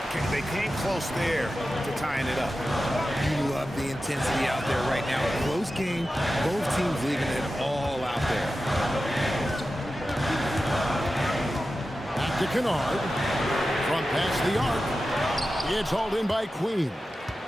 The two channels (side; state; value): both; normal; correlation 0.93